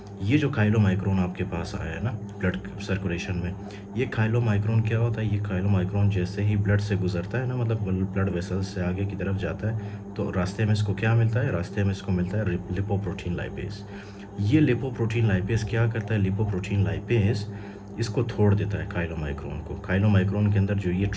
ये जो काइलोमाइक्रोन आपके पास आया है ना ब्लड सर्कुलेशन में, ये काइलोमाइक्रोन क्या होता है, ये काइलोमाइक्रोन जैसे ही ब्लड से गुजरता है ना, मतलब ब्लड वेसल्स से आगे की तरफ जाता है, तो रास्ते में इसको क्या मिलता है, रास्ते में इसको मिलता है लिपोप्रोटीन लाइपेज। ये लिपोप्रोटीन लाइपेज क्या करता है, लिपोप्रोटीन लाइपेज इसको तोड़ देता है काइलोमाइक्रोन को। काइलोमाइक्रोन के अंदर जो ये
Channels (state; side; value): identical; both; correlation 1.00